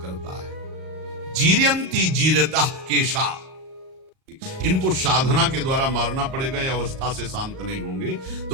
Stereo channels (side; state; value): left; late; 37 ms